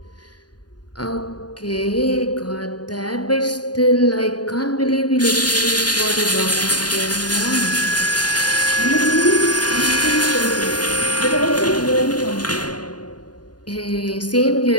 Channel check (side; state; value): right; late; 0.70 ms